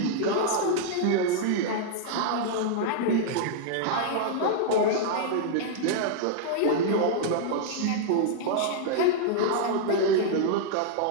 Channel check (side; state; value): both; different; correlation -0.01